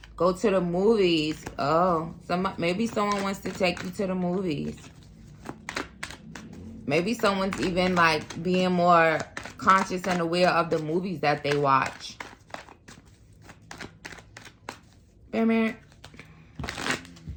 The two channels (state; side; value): identical; both; correlation 1.00